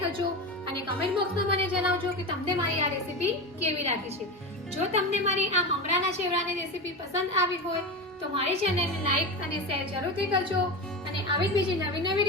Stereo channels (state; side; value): normal; both; correlation 0.22